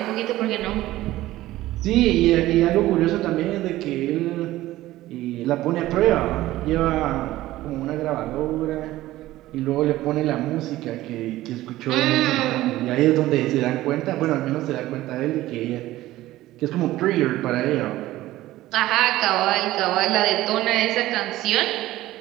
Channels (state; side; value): quieter; left; 16.1 dB